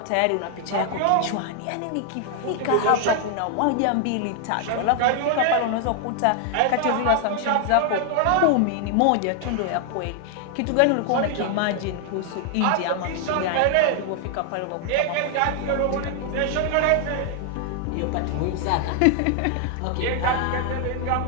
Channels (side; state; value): both; different; correlation 0.00